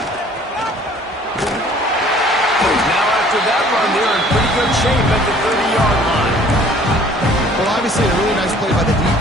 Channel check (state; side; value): normal; both; correlation 0.54